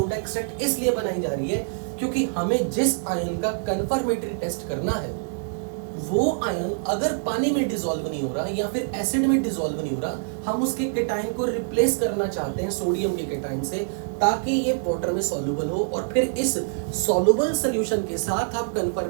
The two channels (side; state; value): left; silent; 62 dB below the other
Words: एक्सट्रैक्ट इसलिए बनाई जा रही है क्योंकि हमें जिस आयन का कंफर्मेटरी टेस्ट करना है वो आयन अगर पानी में डिसॉल्व नहीं हो रहा या फिर एसिड में डिसॉल्व नहीं हो रहा, हम उसके केटायन को रिप्लेस करना चाहते हैं सोडियम के केटायन से, ताकि ये वाटर में सॉल्युबल हो, और फिर इस सॉल्युबल सॉल्यूशन के साथ आप